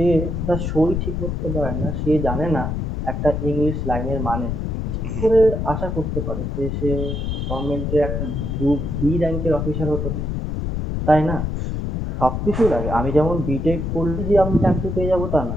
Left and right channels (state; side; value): noise; left; rumble, 2 dB below the sound